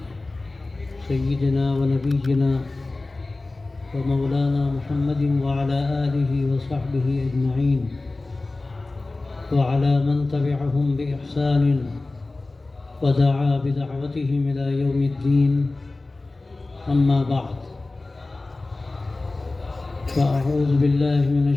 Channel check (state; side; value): quieter; right; 3.2 dB